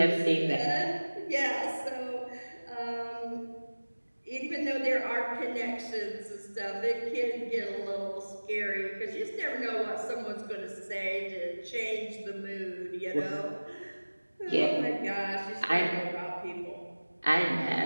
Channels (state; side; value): inverted; both; correlation -1.00